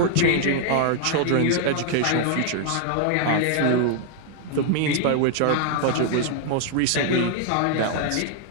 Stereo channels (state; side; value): different; both; correlation 0.00